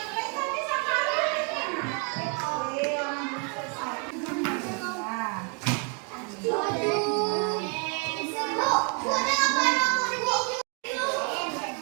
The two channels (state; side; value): quieter; left; 36.9 dB